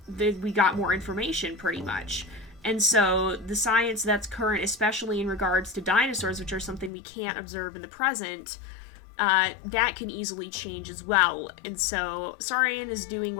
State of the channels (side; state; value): right; drops out; at 6.9 s